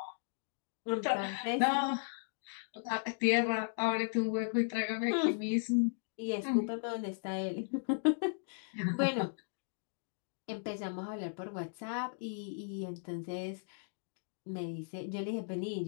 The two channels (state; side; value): silent; right; digital silence